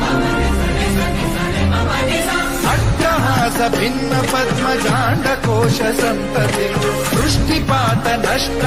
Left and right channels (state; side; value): identical; both; correlation 1.00